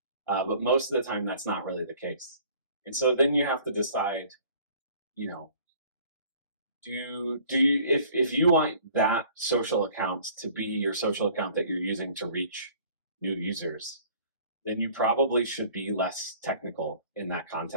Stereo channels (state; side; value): inverted; both; correlation -0.52